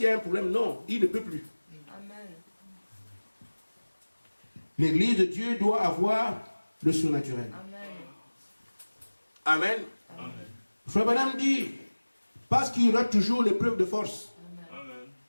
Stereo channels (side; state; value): both; inverted; correlation -1.00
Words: y a un problème? Non, ils ne peuvent plus. Amen. L'église de Dieu doit avoir le surnaturel. Amen. Amen. Amen. Frère Branham dit, parce qu'il y aura toujours l'épreuve de force. Amen. Amen.